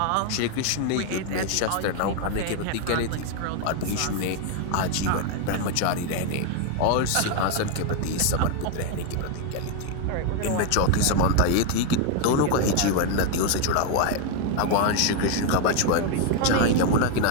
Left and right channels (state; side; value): different; both; correlation 0.01